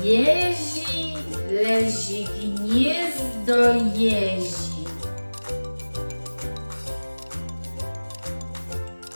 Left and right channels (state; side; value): inverted; both; correlation -1.00